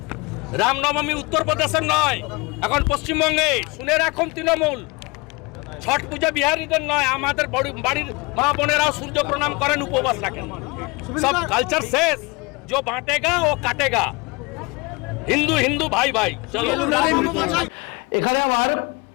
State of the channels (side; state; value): right; quieter; 26.7 dB